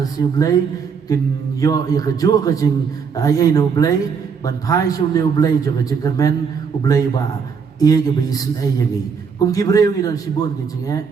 joblei kin yo ya ke jo ke jing ai no blei ban phai shu ne blei jo ke cekermen ublei ba ye ke bi snei yangi kum gibreu ni dan sibun ke jinge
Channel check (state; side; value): quieter; left; 6.1 dB